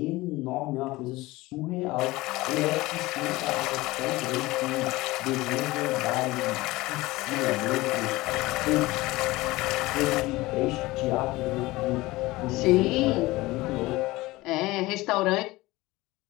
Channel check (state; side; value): quieter; right; 19.9 dB